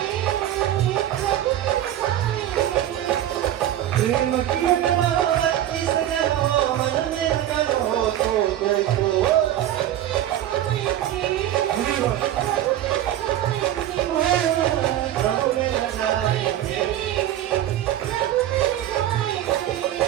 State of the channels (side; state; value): left; quieter; 12.3 dB